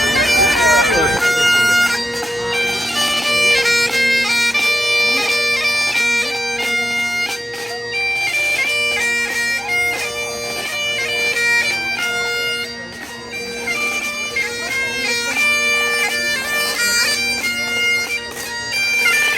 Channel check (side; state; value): both; normal; correlation 0.94